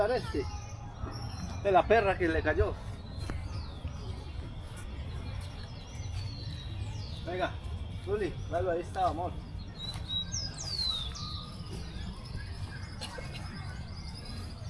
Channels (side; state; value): both; identical; correlation 1.00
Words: este. De la perra que le cayó. Venga, Zuli, dale, ahí está, amor.